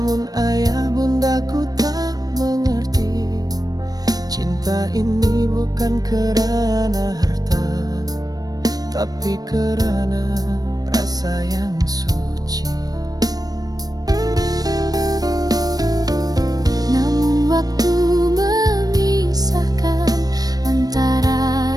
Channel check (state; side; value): late; left; 0.19 ms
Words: ayah bundaku tak mengerti. Cinta ini bukan kerana harta, tapi kerana rasa yang suci. Namun waktu memisahkan antara